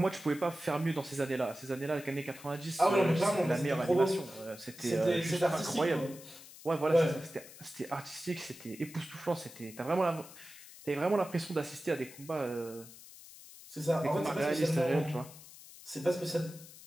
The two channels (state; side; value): noise; left; hiss, 18 dB below the sound